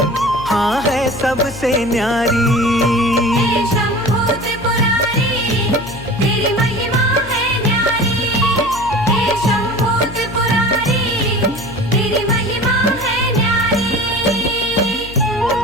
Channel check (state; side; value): noise; left; hum, 15 dB below the sound